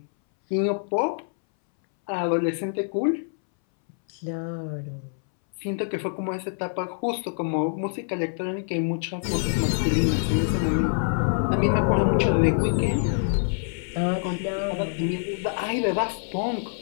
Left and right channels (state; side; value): silent; right; 61 dB below the other